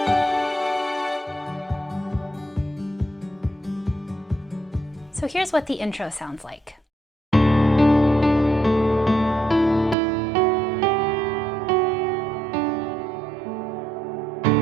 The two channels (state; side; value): drops out; left; at 10.0 s